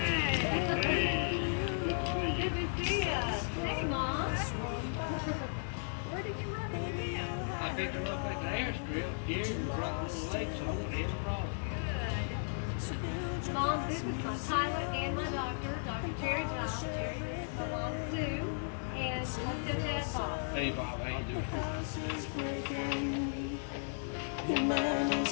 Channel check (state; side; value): silent; right; digital silence